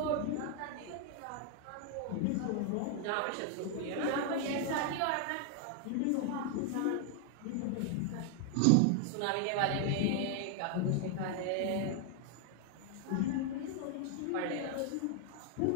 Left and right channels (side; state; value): both; different; correlation 0.00